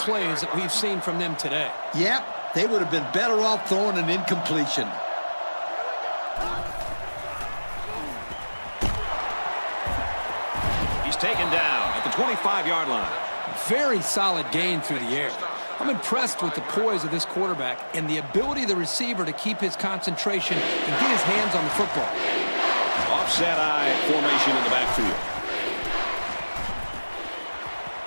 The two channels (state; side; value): inverted; both; correlation -1.00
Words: that we've seen from them today. Yep, they would have been better off throwing an incompletion. He's taken down at the 25-yard line. Very solid gain through the air. I'm impressed with the poise of this quarterback and the ability of the receiver to keep his concentration and get his hands on the football. Offset I formation in the backfield.